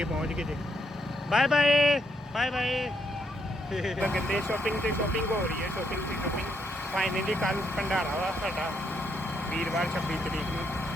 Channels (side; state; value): both; normal; correlation 0.75